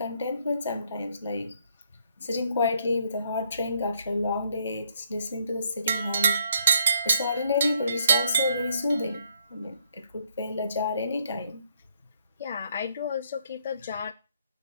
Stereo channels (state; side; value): inverted; both; correlation -0.69